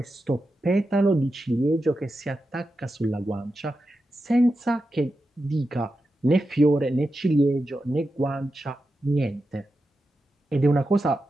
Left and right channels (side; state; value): both; normal; correlation 0.90